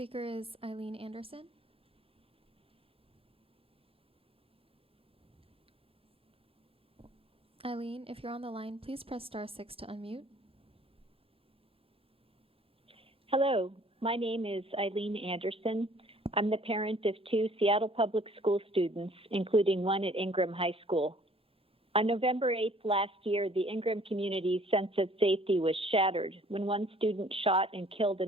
is Eileen Anderson. Eileen, if you're on the line, please press *6 to unmute. Hello, my name is Eileen Anderson. I'm the parent of 2 Seattle Public School students, including one at Ingram High School. On November 8th last year, the Ingram community's sense of safety was shattered when one student shot and killed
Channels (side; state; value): both; normal; correlation 0.56